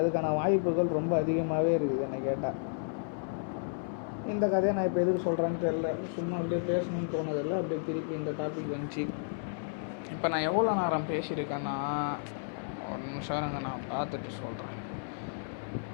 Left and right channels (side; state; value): right; silent; 56 dB below the other